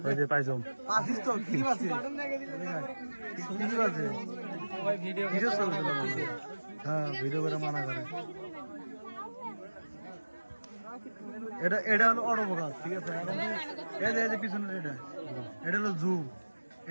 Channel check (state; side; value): inverted; both; correlation -1.00